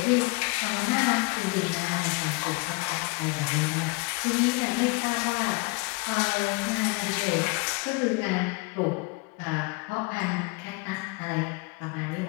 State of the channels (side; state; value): right; quieter; 28.1 dB